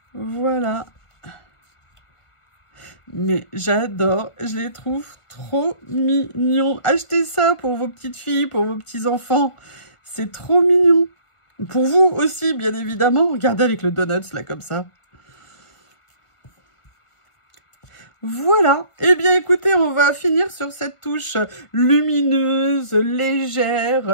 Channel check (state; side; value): late; right; 1.5 ms